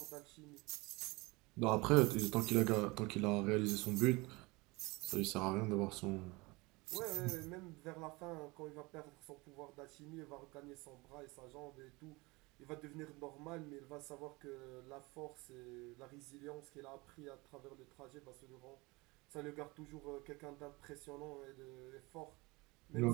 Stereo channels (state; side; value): quieter; left; 24.4 dB